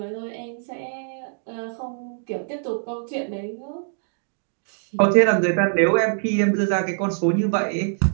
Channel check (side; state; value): left; silent; digital silence